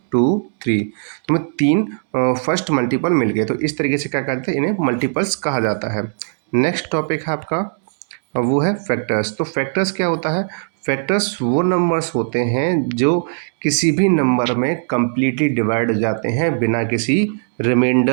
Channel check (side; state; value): left; silent; digital silence